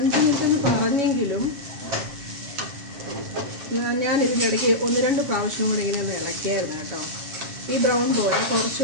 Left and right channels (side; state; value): left; late; 7.4 ms